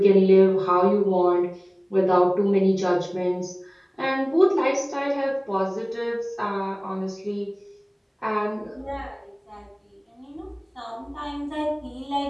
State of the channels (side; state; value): both; identical; correlation 1.00